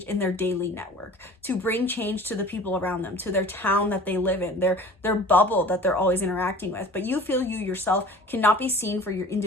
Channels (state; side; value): normal; both; correlation 0.43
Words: in their daily network, to bring change to the people around them, to their town that they live in, their bubble that they're always interacting with. But you feel you yourself cannot be seen for your